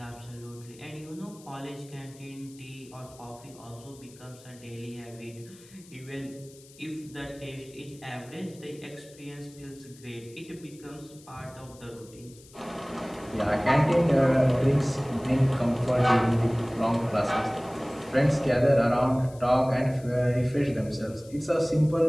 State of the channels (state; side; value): noise; left; hiss, 23 dB below the sound